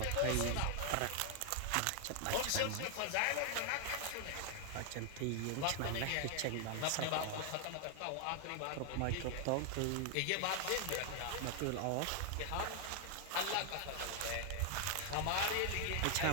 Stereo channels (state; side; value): different; both; correlation 0.00